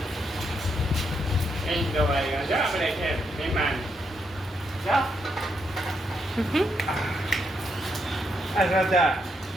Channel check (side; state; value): both; normal; correlation 0.79